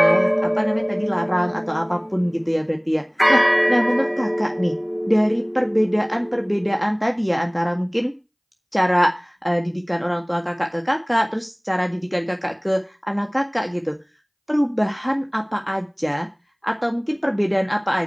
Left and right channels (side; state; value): both; identical; correlation 1.00